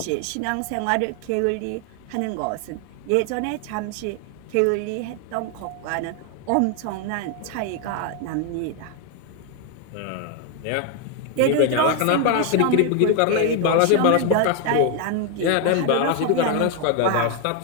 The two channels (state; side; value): different; both; correlation 0.01